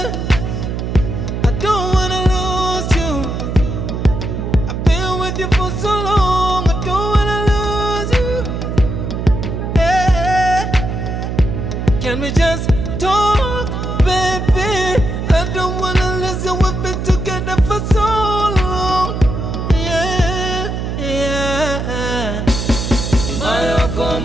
I don't wanna lose you. I've been with you for so long. I don't wanna lose you. Yeah, can we just talk, baby? I don't wanna listen. We've been together for so long. Yeah, yeah. Mayo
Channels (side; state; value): right; noise; hum, 3 dB below the sound